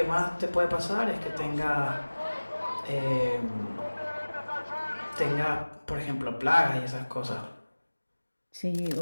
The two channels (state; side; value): inverted; both; correlation -1.00